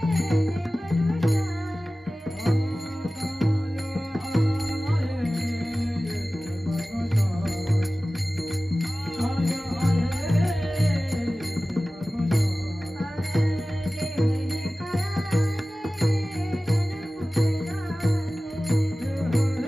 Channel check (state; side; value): normal; both; correlation 0.96